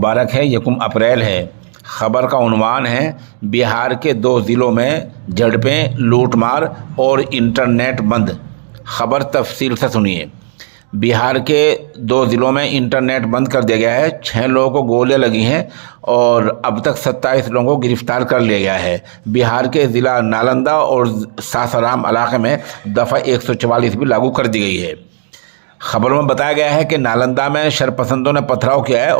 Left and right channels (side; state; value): left; silent; digital silence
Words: है, यकुम अप्रैल है। ख़बर का उन्वान है बिहार के 2 ज़िलों में झड़पें, लूटमार और इंटरनेट बंद। ख़बर तफसील से सुनिए। बिहार के 2 ज़िलों में इंटरनेट बंद कर दिया गया है। 6 लोगों को गोलियां लगी हैं और अब तक 27 लोगों को गिरफ्तार कर लिया गया है। बिहार के ज़िला नालंदा और सासाराम इलाके में दफ़ा 144 भी लागू कर दी गई है। खबरों में बताया गया है कि नालंदा में शरपसंदों ने पथराव किया है